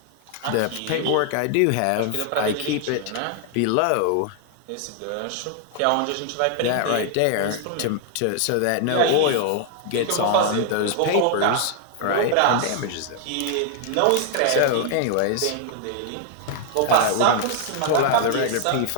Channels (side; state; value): both; different; correlation 0.00